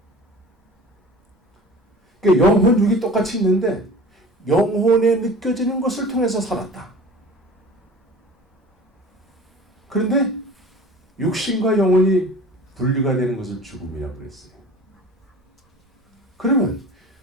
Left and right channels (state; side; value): normal; both; correlation 0.41